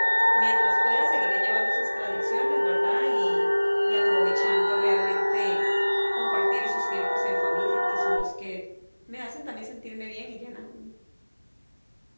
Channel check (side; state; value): both; inverted; correlation -1.00